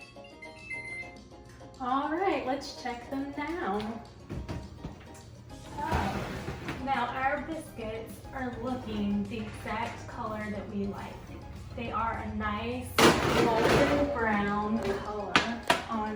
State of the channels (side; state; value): both; identical; correlation 1.00